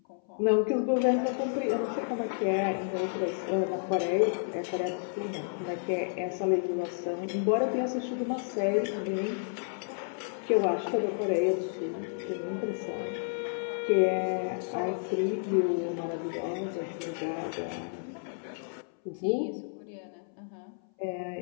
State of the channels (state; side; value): silent; right; 57 dB below the other